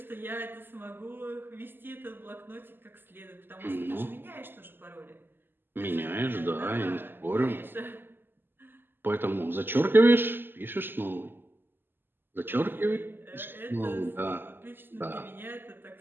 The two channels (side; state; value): left; late; 0.098 ms